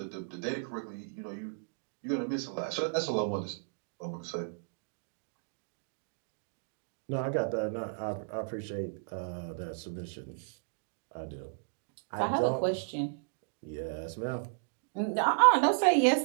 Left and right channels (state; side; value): silent; left; digital silence